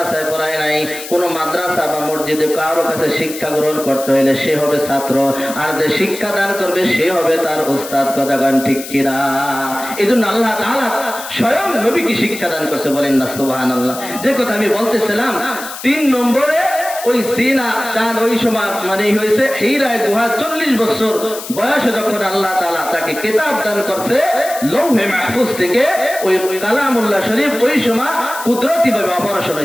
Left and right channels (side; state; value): left; noise; hiss, 11 dB below the sound